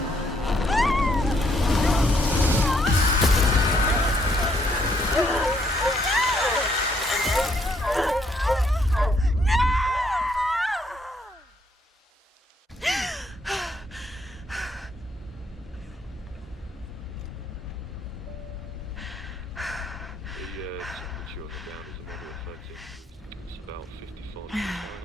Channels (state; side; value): normal; both; correlation 0.71